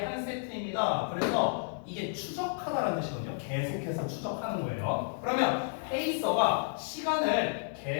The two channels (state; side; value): silent; right; 57 dB below the other